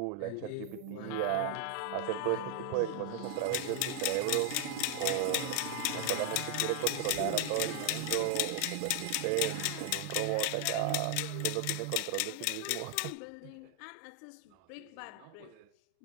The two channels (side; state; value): both; different; correlation 0.00